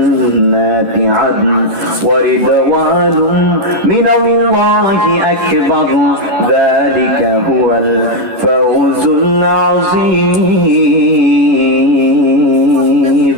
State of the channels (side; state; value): left; late; 10 ms